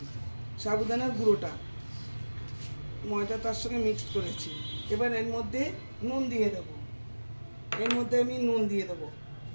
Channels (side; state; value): both; inverted; correlation -1.00